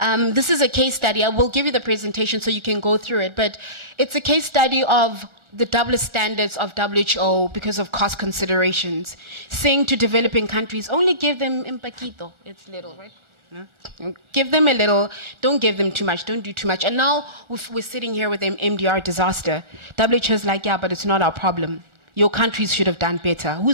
is a case study. I will give you the presentation so you can go through it. But it's a case study of the double standards of WHO because of cost considerations, saying to developing countries, only give them un poquito, it's little, right? Yeah. Give them a little, don't give them too much, don't do too much. And now we're sitting here with an MDR disaster. WHO is like, yeah, but it's not our problem. your countries should have done better.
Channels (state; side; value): late; left; 1.4 ms